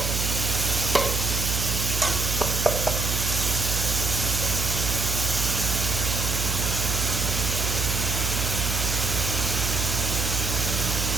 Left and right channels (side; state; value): right; noise; hum, 1 dB below the sound